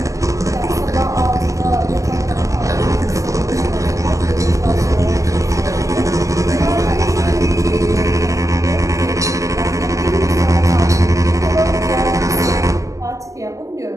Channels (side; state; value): left; late; 0.16 ms